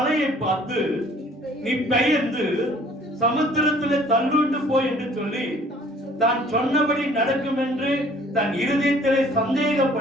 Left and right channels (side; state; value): both; normal; correlation 0.55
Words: பார்த்து நீ பெயர்ந்து சமுத்திரத்திலே தள்ளுண்டு போய் என்று சொல்லி தான் சொன்னபடி நடக்கும் என்று தன் இருதயத்திலே